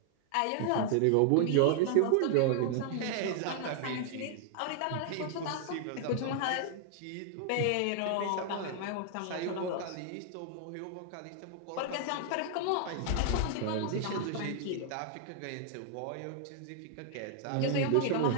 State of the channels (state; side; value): different; both; correlation 0.00